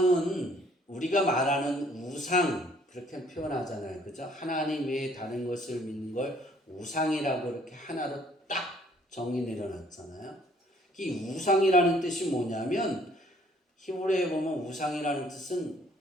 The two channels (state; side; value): normal; both; correlation 0.61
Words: 우리가 말하는 우상 그렇게 표현하잖아요. 그죠? 하나님 외에 다른 것을 믿는 걸 우상이라고 이렇게 하나로 딱 정의 내려놨잖아요. 이 우상이라는 뜻이 뭐냐면 히브리어에 보면 우상이라는 뜻은